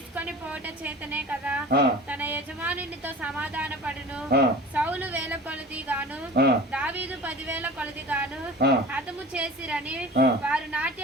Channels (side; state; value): both; normal; correlation 0.38